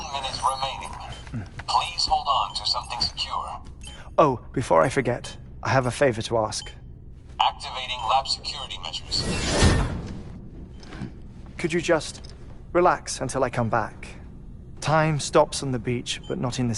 minute remaining. Please hold on to something secure. Oh, before I forget, I have a favor to ask. Activating lab security measures. Could you just relax until I come back? Time stops on the beach, but not in the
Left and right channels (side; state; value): both; identical; correlation 1.00